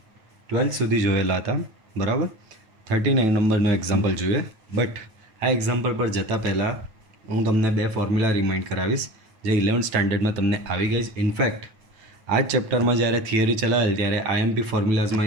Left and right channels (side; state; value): left; late; 9.2 ms